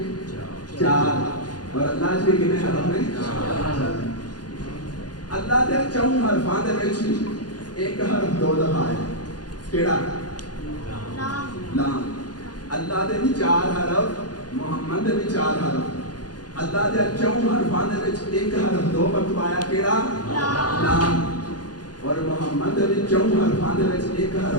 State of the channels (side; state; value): right; late; 0.69 ms